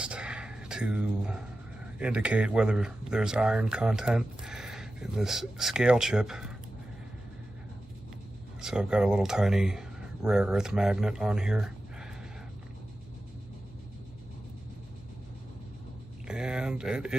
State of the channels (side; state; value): both; normal; correlation 0.93